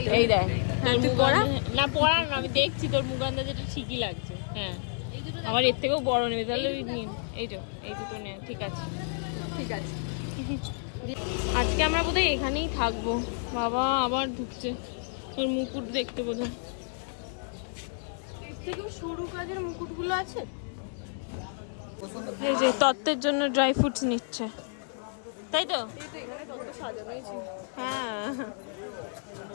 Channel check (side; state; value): right; silent; digital silence